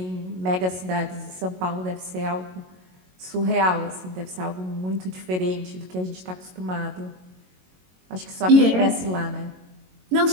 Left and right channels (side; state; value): left; late; 22 ms